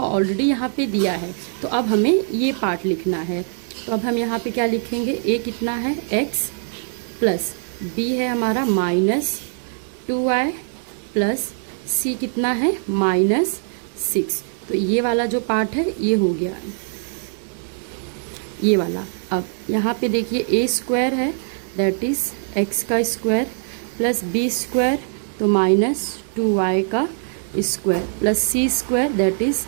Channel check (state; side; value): silent; left; digital silence